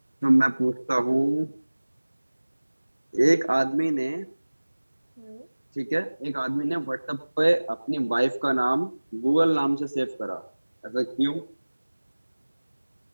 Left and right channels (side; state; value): both; inverted; correlation -1.00